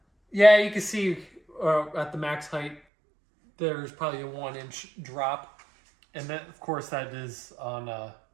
Yeah, you can see at the max height, there's probably a 1 inch drop. And then, of course, that is on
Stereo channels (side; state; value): left; drops out; at 2.8 s